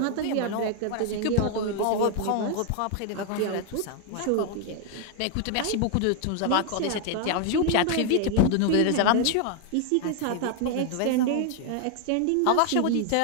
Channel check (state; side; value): different; both; correlation 0.00